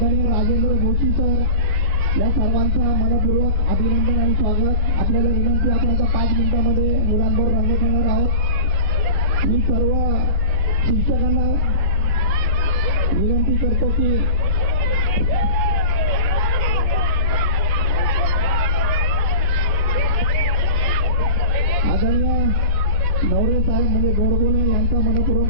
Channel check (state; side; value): late; right; 14 ms